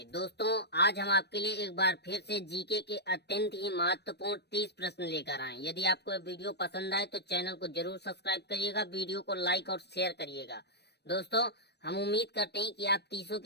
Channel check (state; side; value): late; right; 0.49 ms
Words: दोस्तों, आज हम आपके लिए एक बार फिर से जीके के अत्यंत ही महत्वपूर्ण 30 प्रश्न लेकर आए। यदि आपको यह वीडियो पसंद आए तो चैनल को जरूर सब्सक्राइब करिएगा, वीडियो को लाइक और शेयर करिएगा। दोस्तों, हम उम्मीद करते हैं कि आप 30